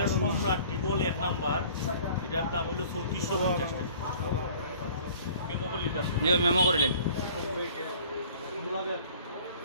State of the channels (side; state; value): both; inverted; correlation -0.50